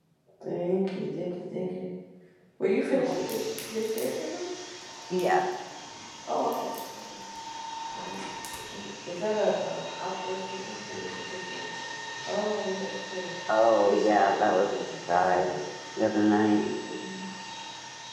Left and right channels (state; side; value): identical; both; correlation 1.00